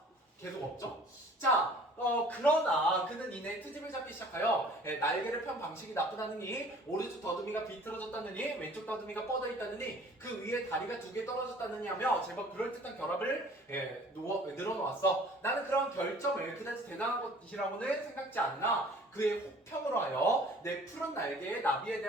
계속 없죠? 자, 그러나 그는 이내 트집을 잡기 시작하여 날개를 편 방식이 나쁘다느니 오른쪽 더듬이가 비틀어졌다느니 왼쪽 더듬이가 뻗어 있다느니 그 위에 다리가 2개 떨어졌다느니 하며 제법 그럴듯한 결합을 늘어놓았어. 나는 그런 결점을 그다지 대단한 것이라고는 생각지 않으나 그의 혹평으로 하여 내 푸른 날개의 나비에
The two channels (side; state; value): both; normal; correlation 0.51